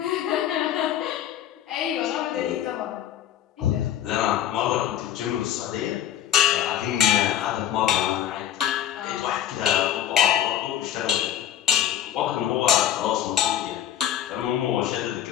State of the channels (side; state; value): right; quieter; 10.9 dB